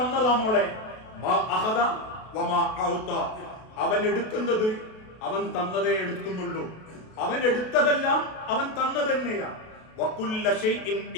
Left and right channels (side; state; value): right; late; 32 ms